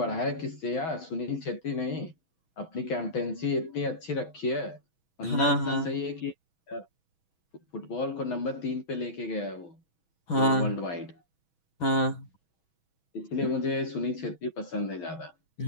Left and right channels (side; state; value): right; late; 6.2 ms